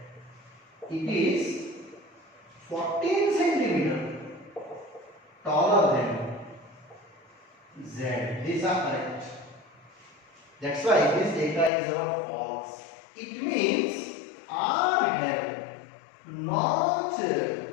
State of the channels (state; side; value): drops out; right; at 11.7 s